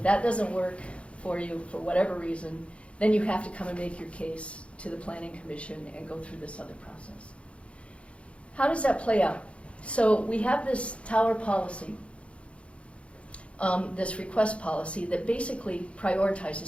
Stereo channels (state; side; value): late; right; 0.061 ms